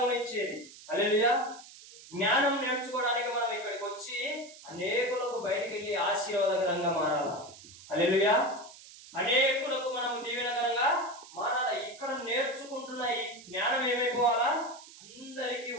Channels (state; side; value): noise; right; hiss, 19 dB below the sound